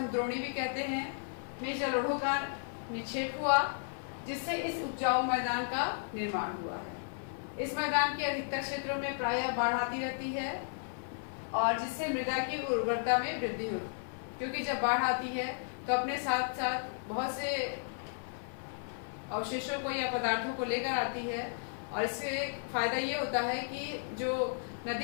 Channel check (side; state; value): right; silent; 55 dB below the other